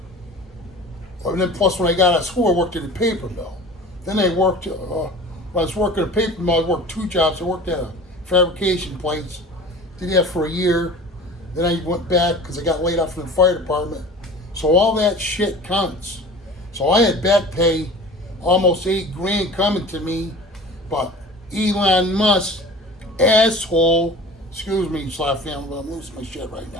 and then plus when I got out of school, I worked at a paper mill. Then I worked, when I was working at a paper mill, I worked 2 jobs. I worked at a fabrication place. Did that for a year. Then I went back because I got laid off from the fire department. So all that shit counts. So I had back pay, almost $8,000 coming to me, but Elon Musk, asshole, excuse me, Slap family, but I'm losing my shit right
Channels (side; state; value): both; normal; correlation 0.40